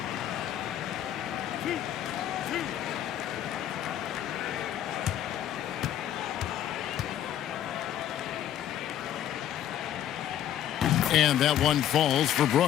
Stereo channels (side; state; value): right; quieter; 11.1 dB